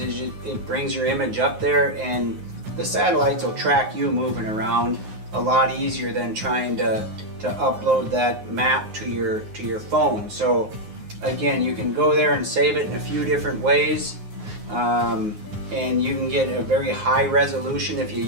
it brings your image up there, and the satellites will track you moving around a lot easier than trying to upload that map to your phone. So again, you can go there and save it in a few different ways, and you can get a very high resolution if you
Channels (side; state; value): left; late; 9.5 ms